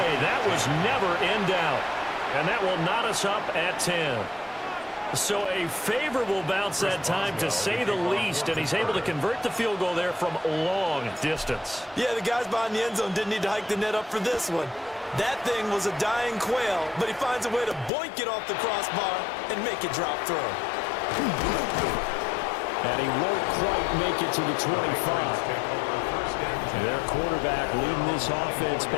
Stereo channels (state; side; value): drops out; right; at 17.9 s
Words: That was never in doubt. And that will knot us up at 10. So a favorable bounce that time, to say the least, and he's able to convert the field goal there from long distance. Yeah, the guys behind the end zone didn't need to hike the net up for this one. That thing was a dying quail, but he finds a way to boink it off the crossbar and make it drop through. And he won't quite make it to the 25. Their quarterback leading this offense